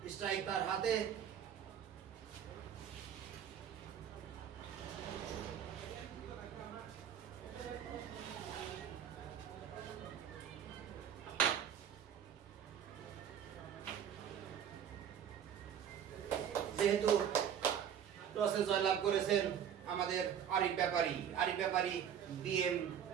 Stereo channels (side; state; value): left; quieter; 8.9 dB